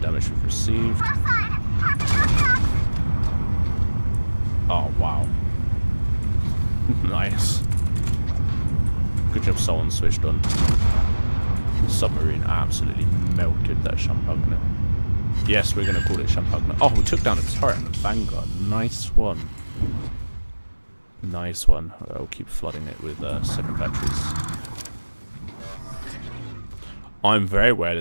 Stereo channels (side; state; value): both; inverted; correlation -1.00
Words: damage we've received. Oh, wow. Nice. Good job someone switched on. The submarine absolutely melted that Champagne. Yes, we're going to call it Champagne. Oh, we took down a turret and a Vanguard. Nice one. Nice one. I'll keep flooding it with second batteries. I'm very aware